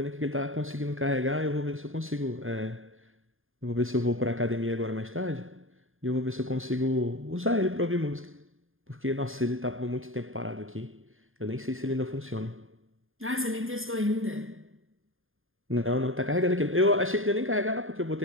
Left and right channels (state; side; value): late; left; 0.59 ms